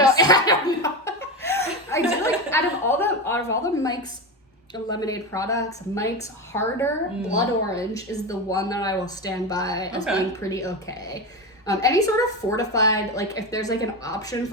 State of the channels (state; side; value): normal; both; correlation 0.19